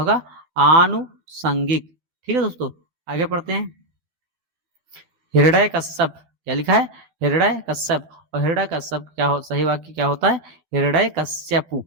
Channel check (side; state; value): left; late; 13 ms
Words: आनुसंगिक, ठीक है दोस्तों। आगे पढ़ते हैं, हृदय कश्यप, क्या लिखा है, हृदय कश्यप, और हृदय कश्यप क्या हो, सही वाक्य क्या होता है, हृदय कश्यपु,